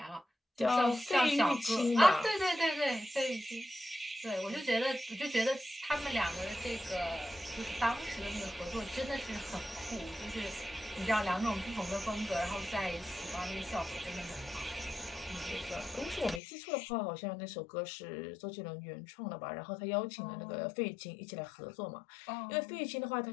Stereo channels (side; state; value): right; drops out; at 16.4 s